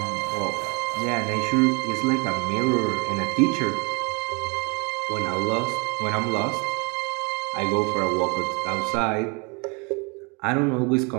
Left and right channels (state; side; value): quieter; left; 31.8 dB